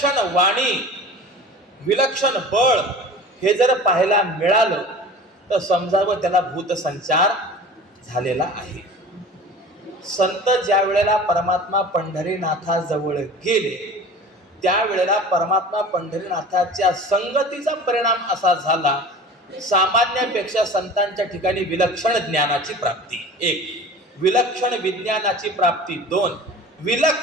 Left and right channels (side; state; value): both; normal; correlation 0.39